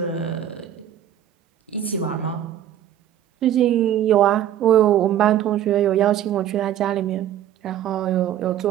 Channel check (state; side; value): quieter; left; 11.1 dB